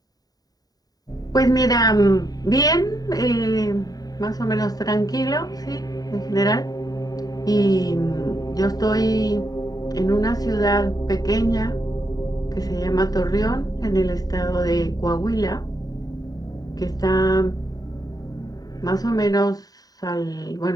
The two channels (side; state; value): right; late; 0.18 ms